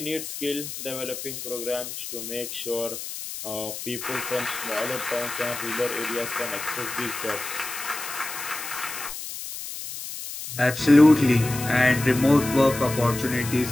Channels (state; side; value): noise; left; hiss, 8 dB below the sound